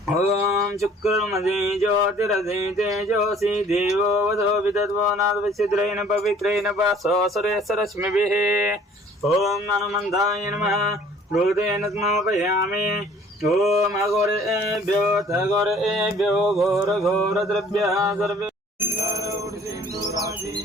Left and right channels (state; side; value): normal; both; correlation 0.54